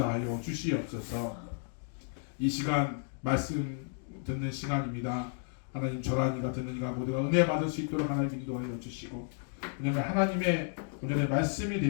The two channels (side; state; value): right; silent; 56 dB below the other